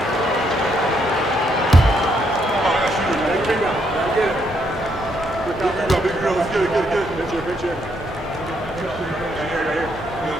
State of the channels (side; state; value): both; normal; correlation 0.74